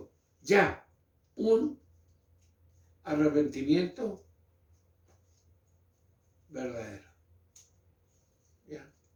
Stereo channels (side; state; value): both; identical; correlation 1.00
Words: ya un arrepentimiento verdadero. ¿Ya?